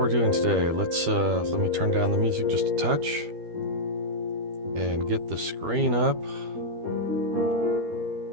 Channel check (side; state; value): left; late; 13 ms